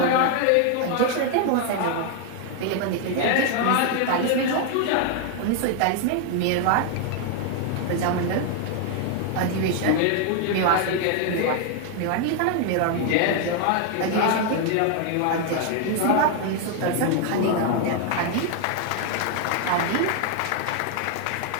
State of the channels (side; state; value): both; different; correlation 0.00